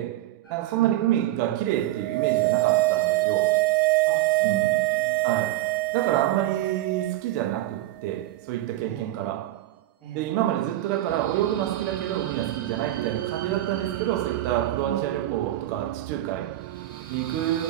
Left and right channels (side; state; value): left; quieter; 15.0 dB